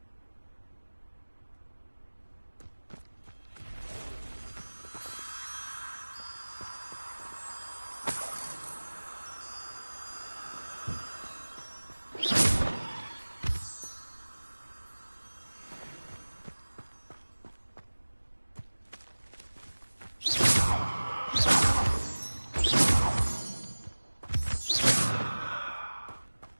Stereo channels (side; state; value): both; inverted; correlation -1.00